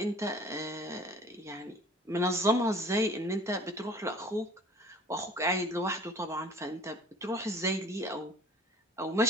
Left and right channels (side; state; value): both; normal; correlation 0.47